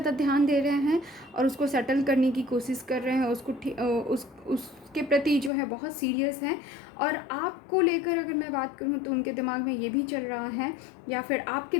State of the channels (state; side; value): drops out; right; at 5.5 s